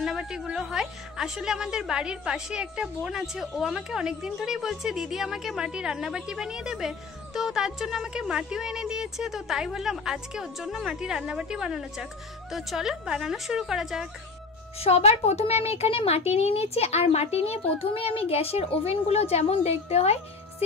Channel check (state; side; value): quieter; right; 4.3 dB